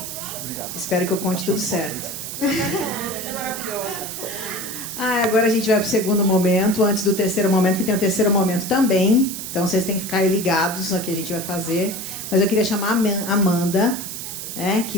Espero que eu conte tudo certo. Você é maravilhosa. Agora a gente vai para o segundo momento, antes do terceiro momento, que tem o terceiro momento também. Então vocês têm que ficar aí ligados no que a gente vai fazer. Mas eu queria chamar a Amanda, que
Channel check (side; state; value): right; noise; hiss, 7 dB below the sound